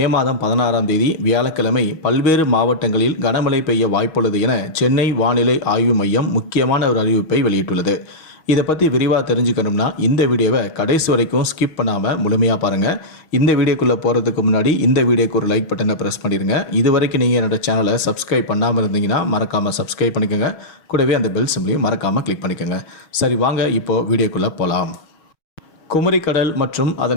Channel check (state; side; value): late; right; 6.2 ms